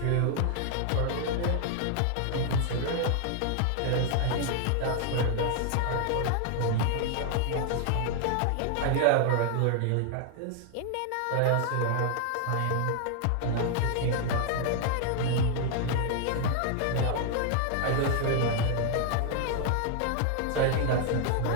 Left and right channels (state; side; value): different; both; correlation 0.00